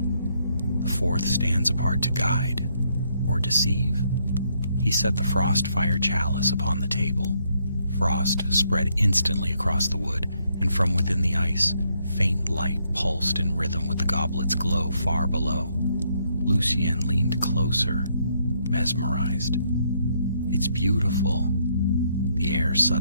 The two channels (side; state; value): both; inverted; correlation -0.73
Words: The 4th stands apart to guide or deceive. He set the Frostfire chalice upon the table. Frost spread instantly across the wood, and from within the ice, faint light pulsed in rhythm with the goblet's glow far below. Lucienne leaned closer, mesmerized. It's beautiful. The air